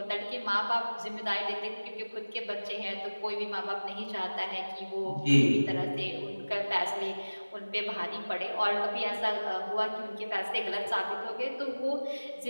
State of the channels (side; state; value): both; inverted; correlation -1.00